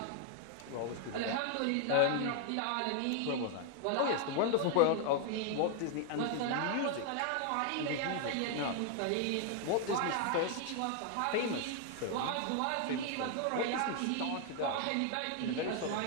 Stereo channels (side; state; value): both; different; correlation 0.00